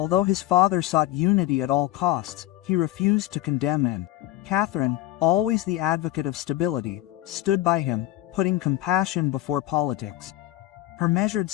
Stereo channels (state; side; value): quieter; right; 15.4 dB